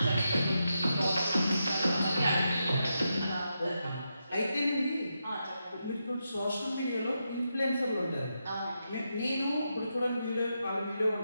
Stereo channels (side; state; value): both; inverted; correlation -0.85